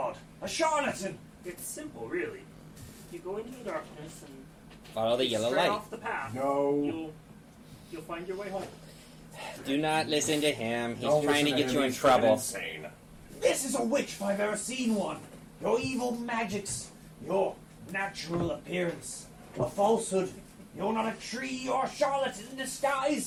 A charlatan! It's simple, really. You go into the darkness and Follow the yellow straight light. off the path. No. You'll find your way home. Do not listen to him. He's Don't trying to listen get you him, in he's trouble. Insane. This is a witch if I've ever seen one. Your evil magics, your natural appearance, a falsehood. You're not a tree or a charlatan in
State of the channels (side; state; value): both; identical; correlation 1.00